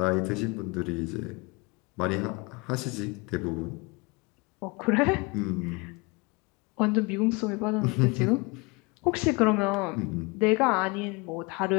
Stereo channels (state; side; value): quieter; right; 27.2 dB